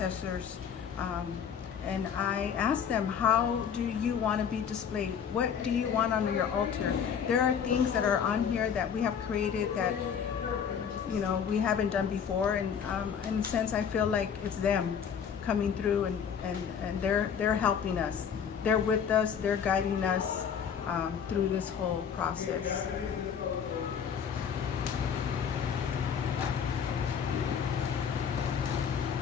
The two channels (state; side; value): quieter; right; 7.5 dB